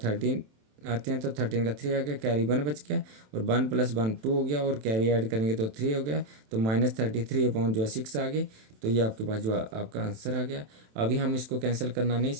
आते हैं, तो 13 का 3 आ गया, कैरी 1 बच गया, और 1 + 1 2 हो गया, और कैरी ऐड करेंगे तो 3 हो गया, तो -33 अपॉन जो है 6 आ गए, तो ये आपके पास जो आपका आंसर आ गया। अभी हम इसको कैंसिल करना नहीं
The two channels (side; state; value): left; late; 27 ms